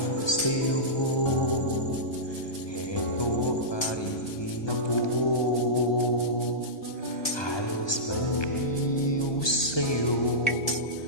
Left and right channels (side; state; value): right; late; 1.2 ms